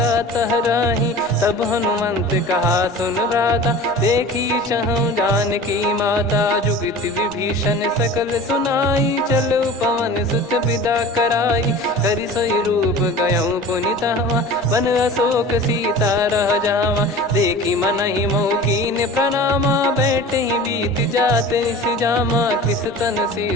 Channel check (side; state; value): both; normal; correlation 0.38